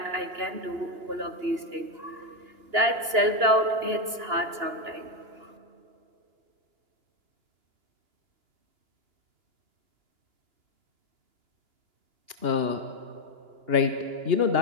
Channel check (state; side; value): late; left; 2.9 ms